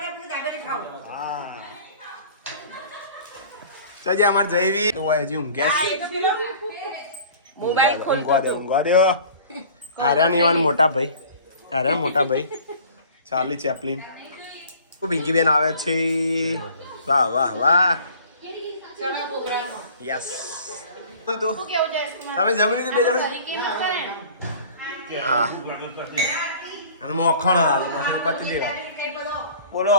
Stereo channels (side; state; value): both; inverted; correlation -0.47